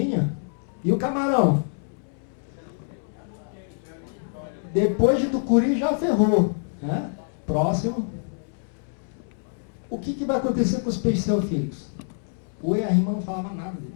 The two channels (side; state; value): right; silent; 61 dB below the other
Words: E o camarão? Depois de Tucuruí já ferrou. Né? Próximo. O que vai acontecer com os peixes teofílicos? O EARIMA não falava nada